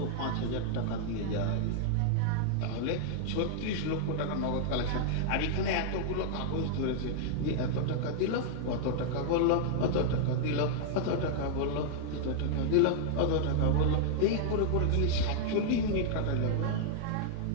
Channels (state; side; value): different; both; correlation -0.01